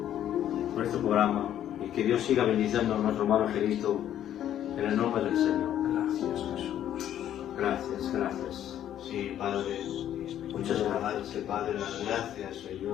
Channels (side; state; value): right; quieter; 11.0 dB